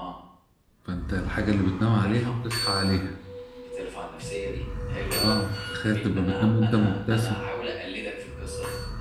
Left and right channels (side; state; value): both; identical; correlation 1.00